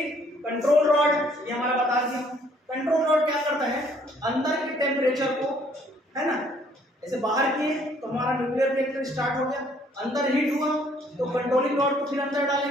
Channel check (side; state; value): both; normal; correlation 0.63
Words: कंट्रोल रॉड ये हमारा बता दिया। कंट्रोल रॉड क्या करता है, अंदर के टेम्परेचर को, है ना, ऐसे बाहर किए तो हमारा न्यूक्लियर रिएक्टर स्टार्ट हो गया, अंदर हीट हुआ तो कंट्रोलिंग रॉड को फिर अंदर